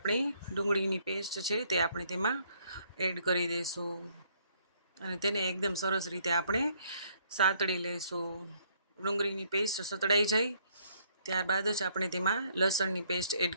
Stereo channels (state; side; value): inverted; both; correlation -0.66